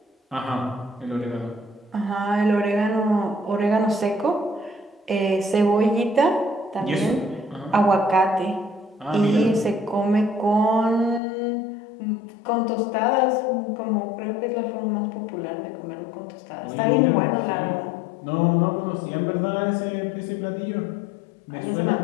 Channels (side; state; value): right; drops out; at 11.2 s